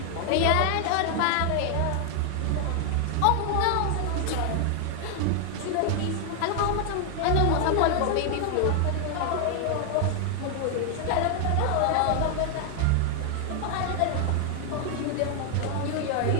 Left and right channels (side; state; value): both; different; correlation 0.00